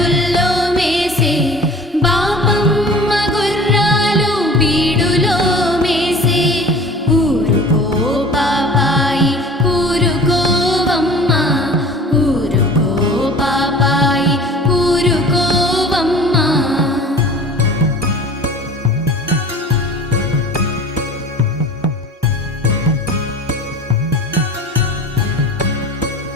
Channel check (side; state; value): both; normal; correlation 0.43